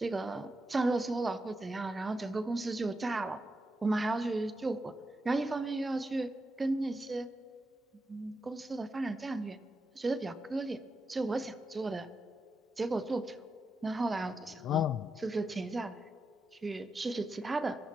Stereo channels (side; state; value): both; normal; correlation 0.87